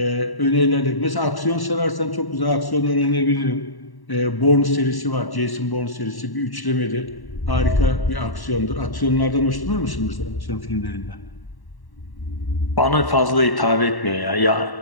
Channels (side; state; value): right; late; 1.1 ms